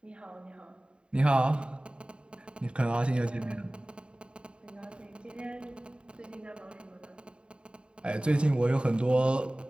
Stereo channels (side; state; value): left; late; 0.053 ms